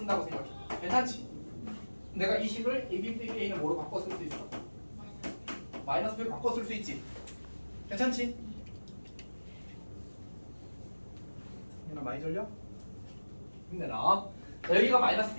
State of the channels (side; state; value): both; inverted; correlation -1.00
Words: 생각해. 괜찮지? 내가 이 식을 AB 빼기 A는 뭐로 바꿔 쓸 수 있어? 마이너스 B로 바꿔 쓸 수 있지? 괜찮지? 많이 졸려? 힘내라. 자, 여기가 마이너스